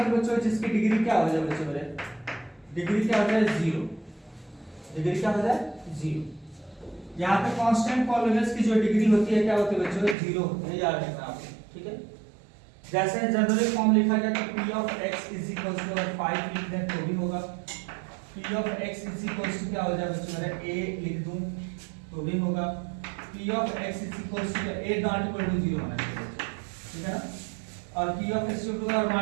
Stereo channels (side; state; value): left; drops out; at 10.2 s